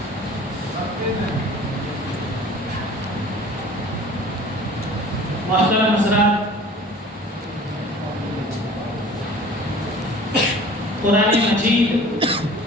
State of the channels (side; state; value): both; normal; correlation 0.45